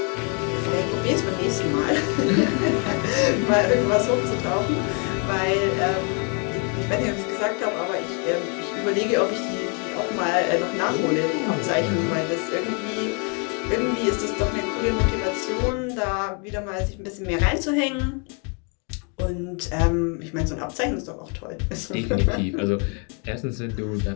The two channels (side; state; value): right; quieter; 37.0 dB